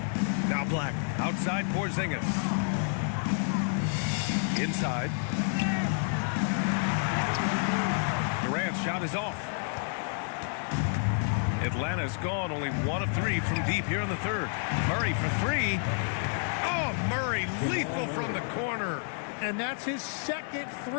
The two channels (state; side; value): silent; right; 55 dB below the other